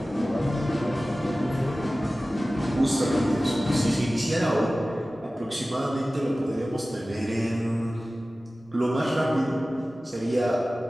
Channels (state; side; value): normal; both; correlation 0.97